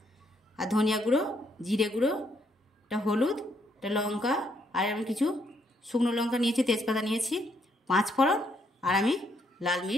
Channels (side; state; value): both; normal; correlation 0.73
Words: আর ধনিয়া গুঁড়ো, জিরে গুঁড়ো, একটা হলুদ, একটা লঙ্কা, আর আমি কিছু শুকনো লঙ্কা নিয়েছি, তেজপাতা নিয়েছি, 5 ফোড়ন, আর আমি লাল